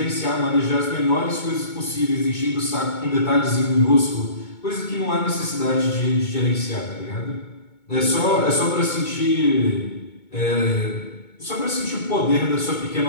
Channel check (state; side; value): late; right; 2.2 ms